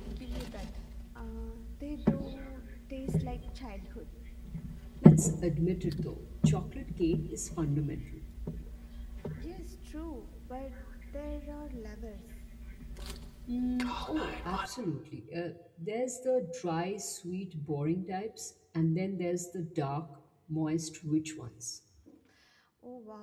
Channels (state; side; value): identical; both; correlation 1.00